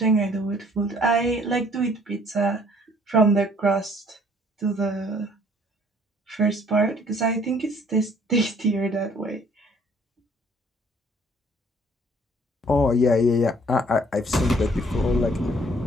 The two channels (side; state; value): both; normal; correlation 0.59